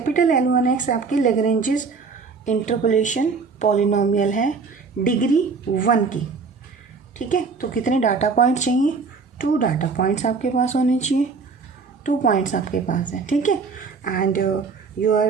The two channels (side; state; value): left; quieter; 4.8 dB